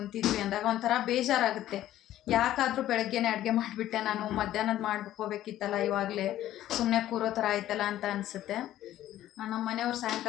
ಅಂದಾಗ ಒಂಥರ ಬೇಜಾರಾಗುತ್ತೆ. ಯಾಕಾದರೂ ಬೆಳಗ್ಗೆನೇ ಅಡುಗೆ ಮಾಡಿಬಿಟ್ಟೆ, ನಾನು ಮಧ್ಯಾಹ್ನದ ಮಾಡ್ಕೋಬೇಕಿತ್ತಲ್ಲ, ಇವಾಗಲೇ ಸುಮ್ಮನೆ ಕೂರೋ ಥರ ಆಯ್ತಲ್ಲ ಅಂತ ಅನಿಸುತ್ತೆ. ನಮ್ಮ ಮನೆಯವ್ರು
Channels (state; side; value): quieter; right; 13.2 dB